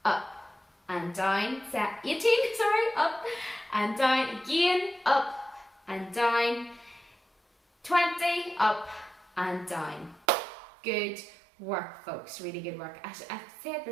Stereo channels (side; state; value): left; drops out; at 10.2 s